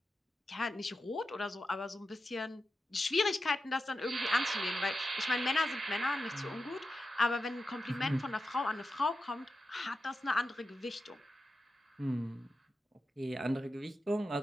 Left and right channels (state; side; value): normal; both; correlation 0.90